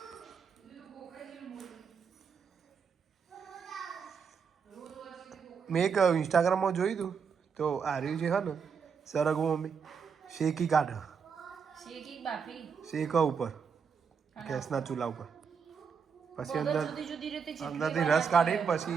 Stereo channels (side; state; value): left; quieter; 6.3 dB